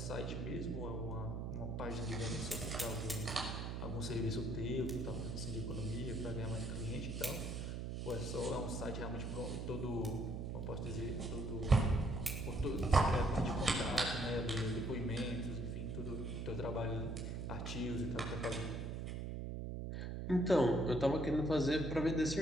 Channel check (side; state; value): right; noise; hum, 4 dB below the sound